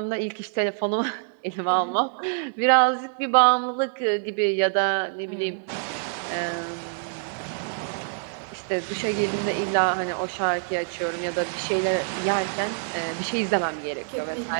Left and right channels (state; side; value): silent; left; digital silence